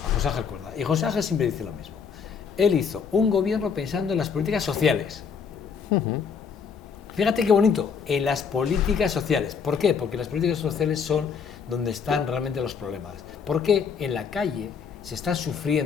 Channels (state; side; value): quieter; right; 6.3 dB